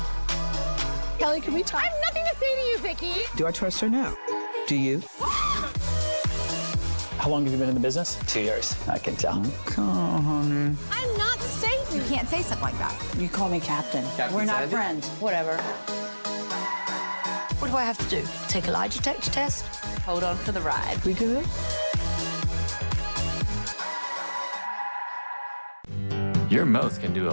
Kelly, can we talk? I have nothing to say to you, Vicky. Do I trust her now? Do you? How long have you been in the business? 2 years. I can tell. Come on, honey. I'm not Satan. You can't say something like that. You call me Captain. We're not friends. Whatever. What do I have to do? Take a lie detector test? Hold on for the ride. We good? Your mouth can do a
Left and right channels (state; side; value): inverted; both; correlation -1.00